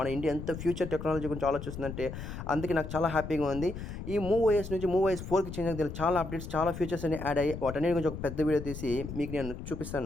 ఇండియా ఎంత ఫ్యూచర్ టెక్నాలజీ గురించి ఆలోచిస్తుందంటే అందుకే నాకు చాలా హ్యాపీగా ఉంది. ఈ మూవ్ ఓఎస్ నుంచి మూవ్ ఓఎస్ 4కి చేంజ్ అయ్యాక చాలా అప్డేట్స్, చాలా ఫీచర్స్ అన్ని యాడ్ అయ్యాయి. వాటన్నిటి గురించి ఒక పెద్ద వీడియో తీసి మీకు నేను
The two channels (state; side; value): noise; left; rumble, 8 dB below the sound